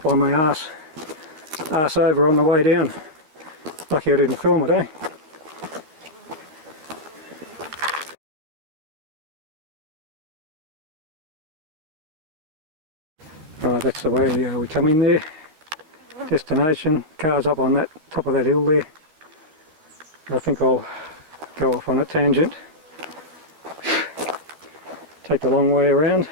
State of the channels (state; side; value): late; left; 13 ms